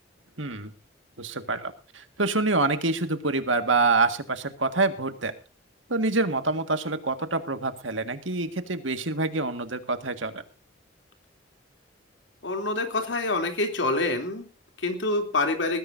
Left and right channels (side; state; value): both; normal; correlation -0.15